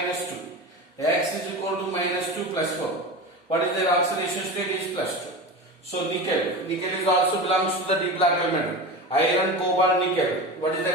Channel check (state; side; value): normal; both; correlation 0.27